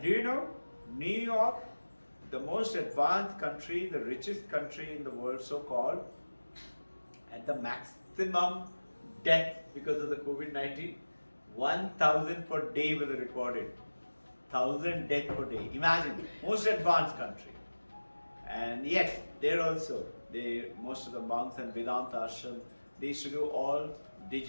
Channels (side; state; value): both; inverted; correlation -1.00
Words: do you know, New York, the most advanced country, the richest country in the world, so-called, at the maximum death because of the COVID-19, 1,000 per day was recorded. 1,000 deaths per day. Imagine, most advanced country. And yet, there also, most of the monks and Vedanta ashram, they used to do all